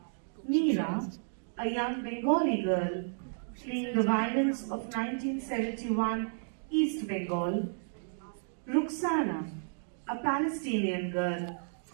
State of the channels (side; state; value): left; silent; digital silence